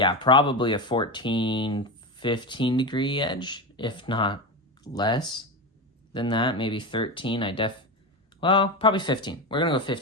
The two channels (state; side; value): normal; both; correlation 0.19